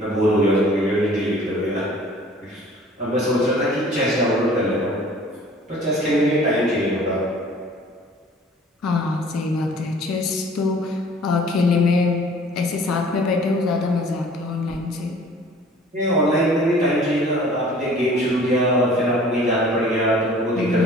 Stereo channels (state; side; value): normal; both; correlation 0.50